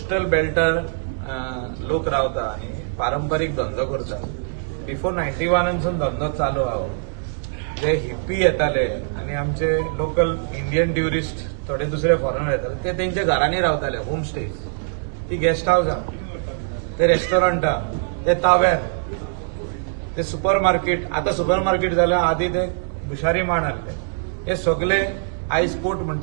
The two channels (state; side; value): silent; left; digital silence